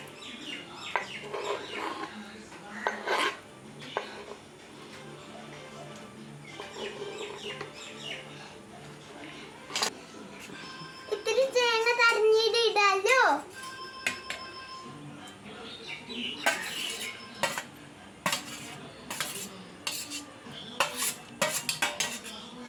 ഇത്തിരി തേങ്ങ തരഞ്ഞിട്ട് ഇടാലോ.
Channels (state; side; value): identical; both; correlation 1.00